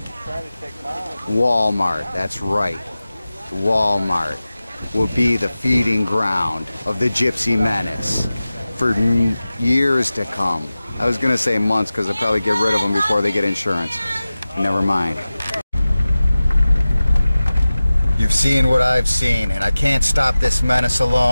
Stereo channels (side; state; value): both; inverted; correlation -0.96